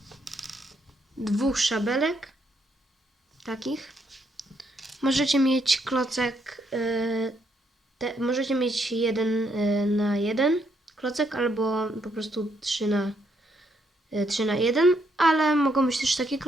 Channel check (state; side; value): normal; both; correlation 0.75